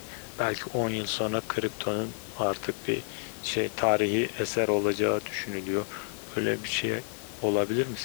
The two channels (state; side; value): silent; right; digital silence